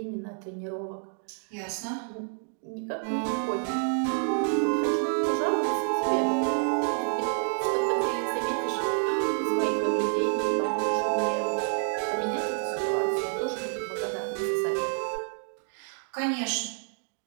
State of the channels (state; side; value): silent; left; 56 dB below the other